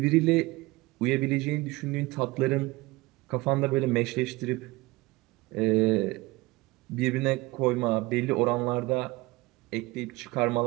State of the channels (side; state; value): left; quieter; 21.4 dB